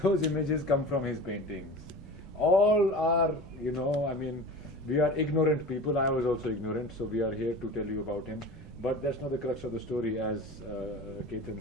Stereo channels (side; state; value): both; normal; correlation 0.34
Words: images come from his paintings. All are, you know, I mean, we are ignorant people. I was also ignorant, so we are here to tell you about him. But that's not the crux of the story, as Ketan